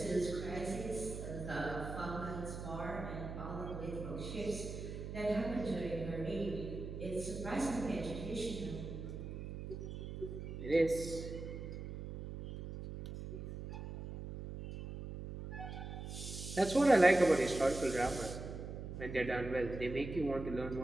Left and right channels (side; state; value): right; noise; hum, 7 dB below the sound